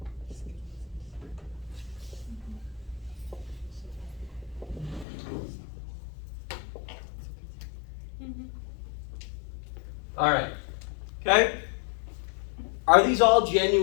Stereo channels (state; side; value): drops out; right; at 5.1 s